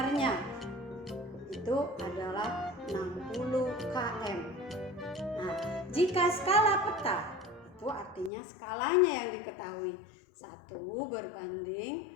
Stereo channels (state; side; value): drops out; right; at 8.3 s